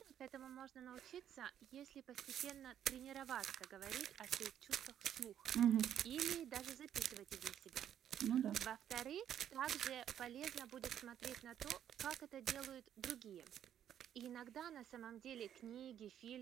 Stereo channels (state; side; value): quieter; left; 10.1 dB